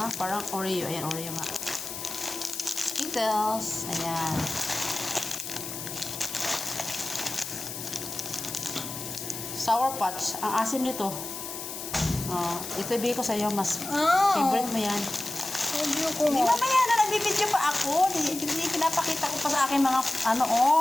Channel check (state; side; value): noise; left; hiss, 8 dB below the sound